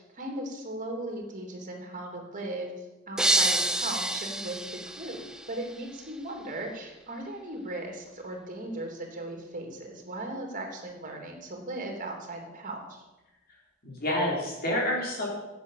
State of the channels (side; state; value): both; normal; correlation 0.25